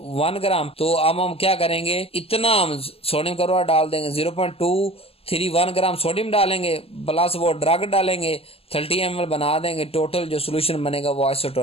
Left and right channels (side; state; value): right; late; 0.28 ms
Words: ग्राम। तो अब हम क्या करेंगे, इतना हम सोडियम क्लोराइड डाल देंगे, 0.231 ग्राम सोडियम डालेंगे, प्लस वो ड्रग डालेंगे, 30 ml बना देंगे, टोटल जो सोल्यूशन बनेगा वो